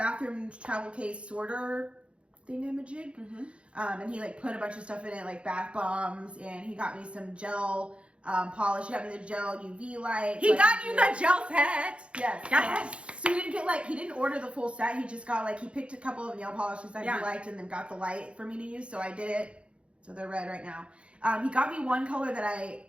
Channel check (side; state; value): left; late; 0.059 ms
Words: travel case sorter thingamajig. Mm-hmm. And he like put a bunch of stuff in it, like bath bombs, and he got me some gel polish. He got me the gel UV light. He got you the gel set. Yes. So he didn't order the full set. He just got he picked a couple of nail polishes that he liked and then got the light for me to use. So I did it. So they're red right now. He got me one color that I